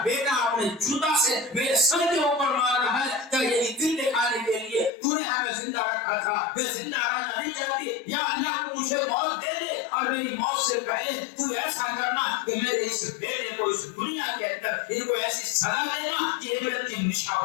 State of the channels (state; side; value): drops out; right; at 4.9 s